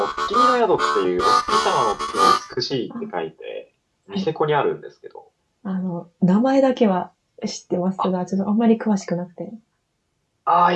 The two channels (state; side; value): identical; both; correlation 1.00